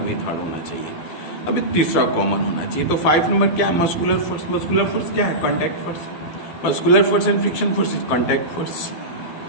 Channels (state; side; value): late; right; 12 ms